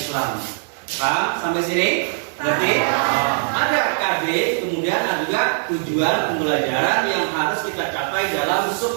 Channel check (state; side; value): silent; left; digital silence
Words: Paham sampai sini? Berarti ada KD, kemudian ada juga tujuan pembelajaran yang harus kita capai dalam